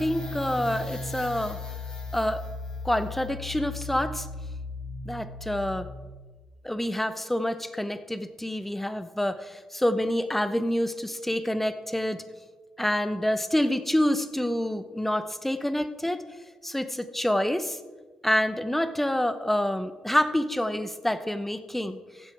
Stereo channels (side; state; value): both; normal; correlation 0.95